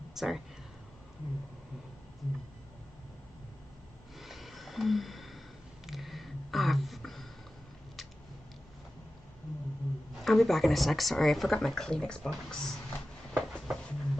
sorry. I'll be back in a sec. Sorry, I forgot my Kleenex box.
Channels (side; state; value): both; normal; correlation 0.94